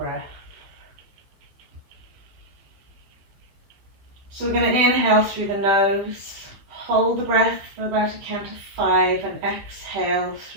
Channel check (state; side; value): late; left; 15 ms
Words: So we're going to inhale through the nose, hold the breath for about a count of 5 and exhale